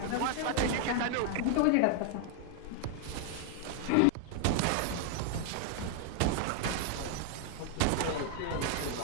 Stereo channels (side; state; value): both; different; correlation 0.00